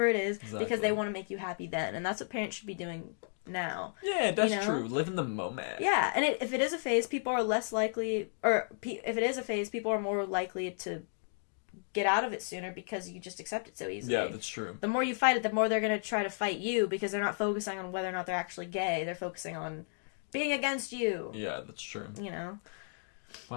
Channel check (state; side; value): silent; right; digital silence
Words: it is because they want to make you happy then. And that's what parents should be doing now. Yeah, that's true. Live in the moment. Yeah, and if it is a phase, people are less likely, or if it is a phase, people are more likely to get out of it sooner because you just accept it so easily. Yeah, that's true. The more you fight it, the more they're going to try to fight you because they're not focusing on whether or not they're actually gay. They're focusing on being against you. Yeah, that's true. You know?